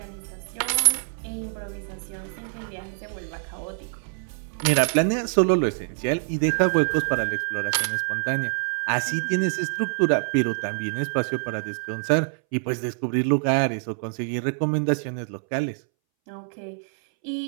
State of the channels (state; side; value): silent; left; 61 dB below the other